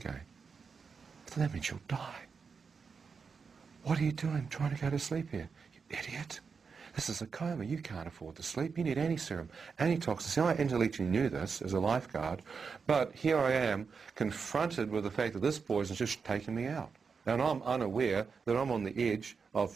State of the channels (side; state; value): left; quieter; 5.5 dB